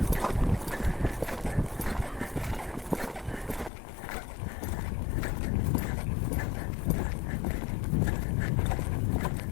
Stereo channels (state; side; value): drops out; right; at 3.7 s